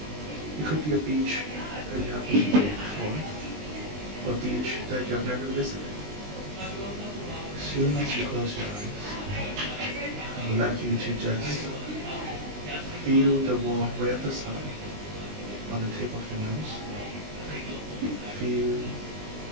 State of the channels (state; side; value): late; left; 20 ms